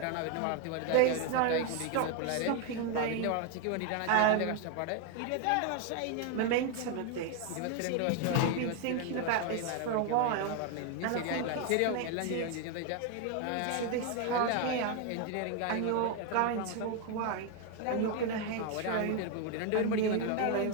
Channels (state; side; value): different; both; correlation 0.01